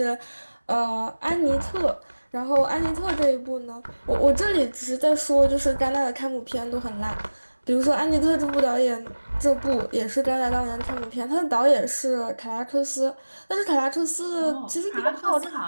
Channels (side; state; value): both; inverted; correlation -1.00